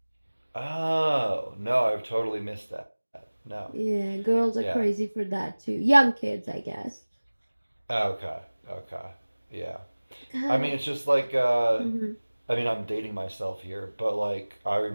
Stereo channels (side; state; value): both; inverted; correlation -1.00